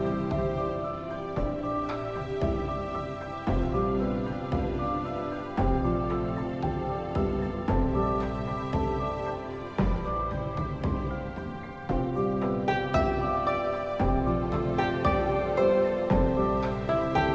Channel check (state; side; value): identical; both; correlation 1.00